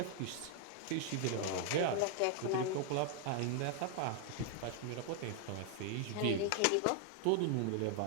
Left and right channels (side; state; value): both; different; correlation 0.00